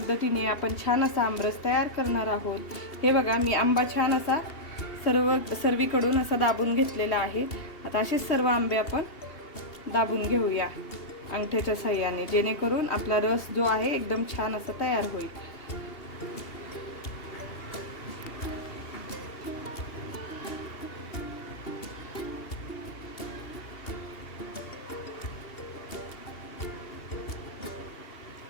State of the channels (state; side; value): late; right; 2.8 ms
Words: आपण छान असा आमरस तयार करणार आहोत। हे बघा, मी आंबा छान असा सर्वीकडून असा दाबून घेतलेला आहे। आता असेच सर्व आंबे आपण दाबून घेऊया अंगठ्याच्या साह्याने, जेणेकरून आपला रस जो आहे एकदम छान असा तयार होईल।